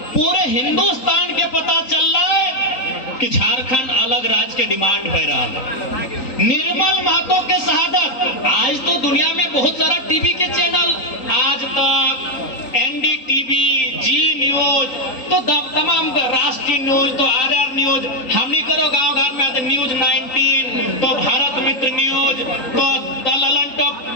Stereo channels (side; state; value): right; late; 3.8 ms